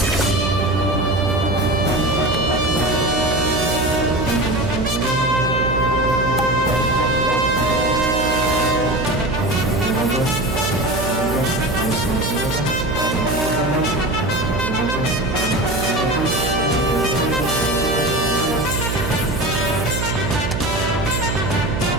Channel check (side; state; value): right; noise; hum, 3 dB below the sound